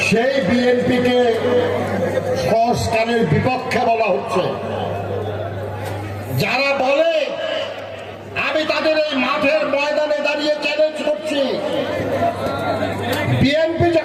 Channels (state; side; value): identical; both; correlation 1.00